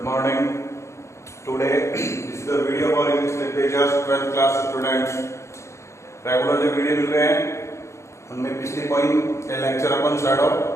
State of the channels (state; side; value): late; right; 0.14 ms